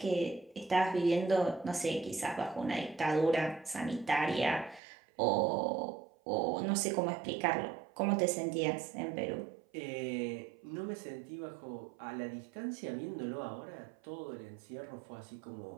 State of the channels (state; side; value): drops out; left; at 4.8 s